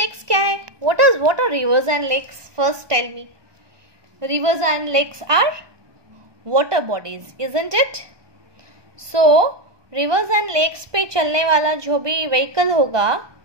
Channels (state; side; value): late; left; 1.2 ms